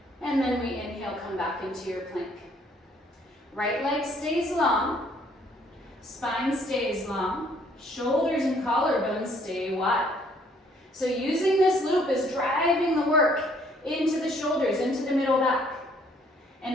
And then we inhale, come back into your plank. Right leg stays long. Spine stays long. Shoulders and collarbones stay wide. So using this loop is driving the work into the shoulders, into the middle back. And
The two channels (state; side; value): normal; both; correlation 0.63